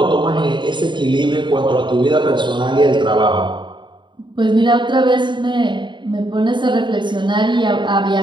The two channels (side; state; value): left; late; 0.23 ms